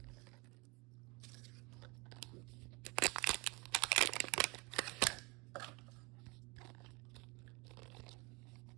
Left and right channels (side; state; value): left; quieter; 27.4 dB